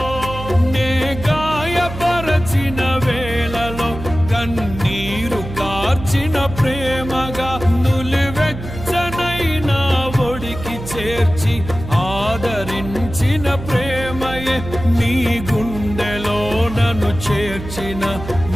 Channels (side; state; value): right; noise; hum, 10 dB below the sound